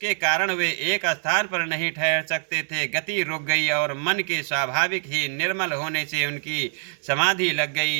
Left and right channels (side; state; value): left; silent; digital silence